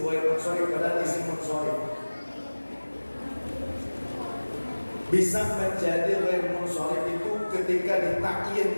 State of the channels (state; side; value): inverted; both; correlation -1.00